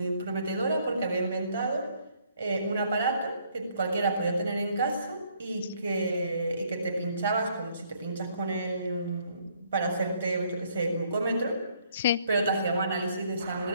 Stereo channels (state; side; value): inverted; both; correlation -0.66